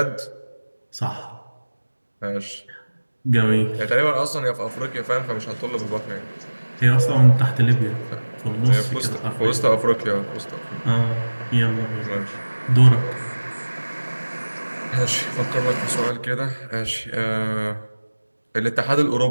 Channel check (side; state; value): both; inverted; correlation -1.00